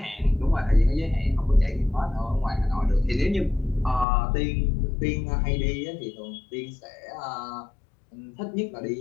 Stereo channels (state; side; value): drops out; right; at 4.0 s